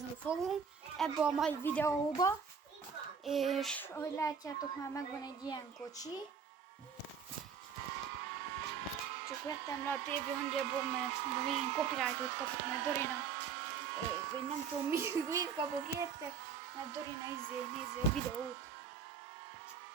fogunk ebbe a mai videóba, és ahogy látjátok, már megvan egy ilyen kocsi. Csak vettem le a TV hangjából, mert végén copyrightot kapok, mert Dorina, vagy nem tudom mit kapok érte, mert Dorina nézi a videót.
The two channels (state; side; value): quieter; left; 6.5 dB